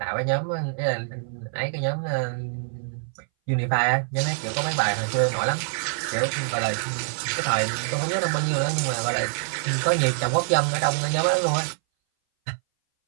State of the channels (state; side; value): silent; left; 59 dB below the other